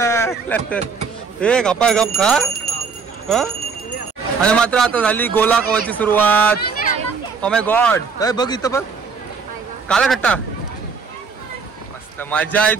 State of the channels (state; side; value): quieter; left; 5.3 dB